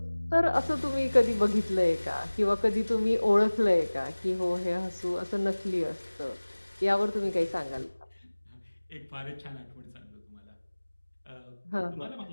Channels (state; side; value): inverted; both; correlation -1.00